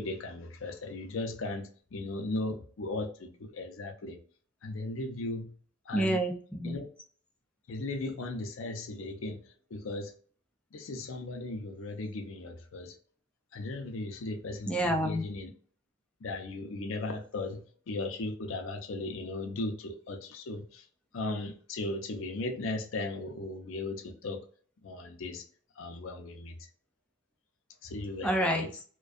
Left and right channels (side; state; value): both; normal; correlation 0.45